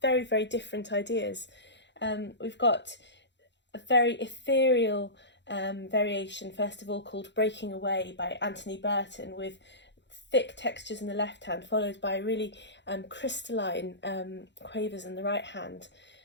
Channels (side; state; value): right; late; 0.52 ms